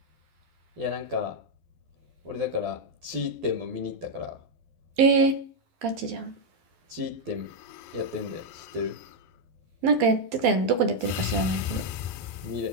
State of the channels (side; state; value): left; late; 12 ms